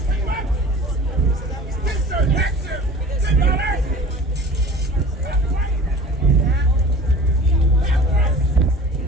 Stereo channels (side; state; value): both; normal; correlation 0.42